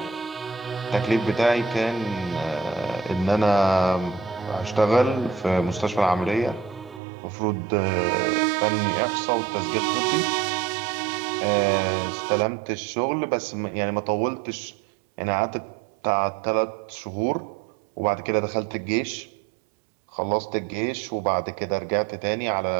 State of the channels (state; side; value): drops out; left; at 7.0 s